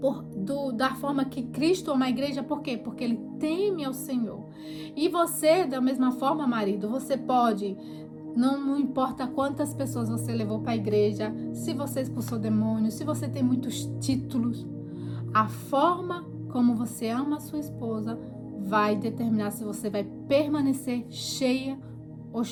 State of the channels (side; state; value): both; identical; correlation 1.00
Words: da forma que Cristo ama a igreja. Por quê? Porque ele teme ao Senhor. E você, da mesma forma, marido, você pode, não importa quantas pessoas você levou para a igreja, se você expulsou demônios, se você tem muitos títulos, a forma como você ama a sua esposa vai determinar se você vai permanecer cheio